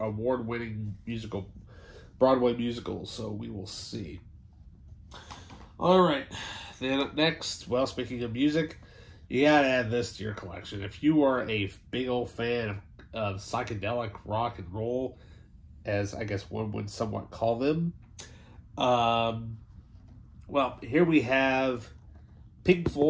musical, Broadway musical, so we will see. Alright, then up next, well, speaking of music, you gotta add this to your collection. If you are a big old fan of psychedelic rock and roll, as I guess one would somewhat call them, well, here we have Pink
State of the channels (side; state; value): both; identical; correlation 1.00